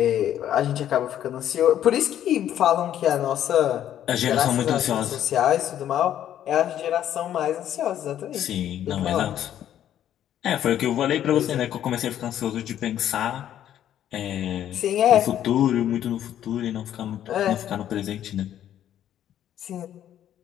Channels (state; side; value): quieter; right; 11.0 dB